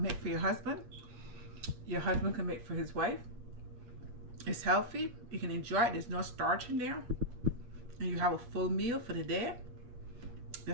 make for your husband. Your husband can make for his wife. It's healthy. You can enjoy it. There's no starch in there. And you have a full meal for the day.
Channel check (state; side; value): late; left; 8.9 ms